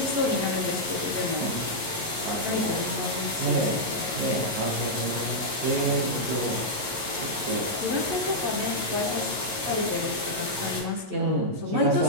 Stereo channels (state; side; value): late; left; 11 ms